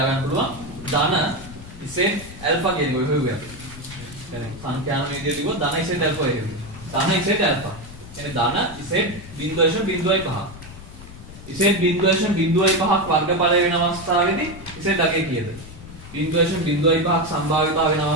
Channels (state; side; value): noise; left; rumble, 15 dB below the sound